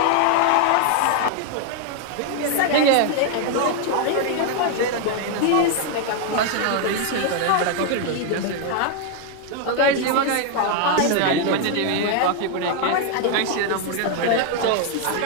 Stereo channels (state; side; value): different; both; correlation 0.00